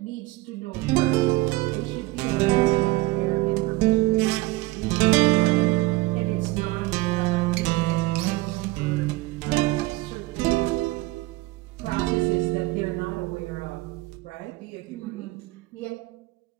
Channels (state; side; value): quieter; left; 19.8 dB